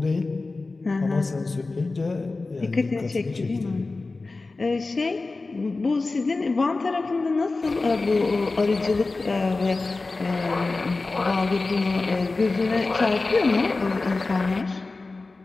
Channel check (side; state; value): right; quieter; 3.5 dB